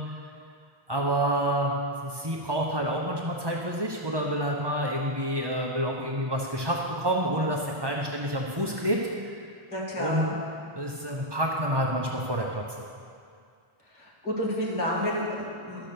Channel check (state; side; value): late; left; 1.2 ms